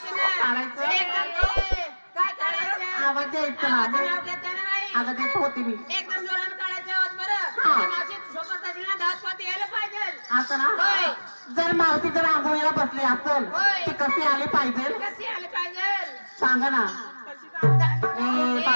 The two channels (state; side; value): inverted; both; correlation -1.00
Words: ना. काढायचं? काय काढायचं? आवाज द्यायचं ना आवाज नाव घेतं ना बाई. अगं देत होती मी एकदम जोरानं काढायचं आवाज बरं. हा. त्या मावशी सोबत असेल ना धावत पळत यायला पाहिजे. असं ना होय. जर मावशी जर आंघोळीला बसली असेल होय. ती कशी आली पाहिजे कशी आली पाहिजे? सांगा ना कशी जाऊ? ए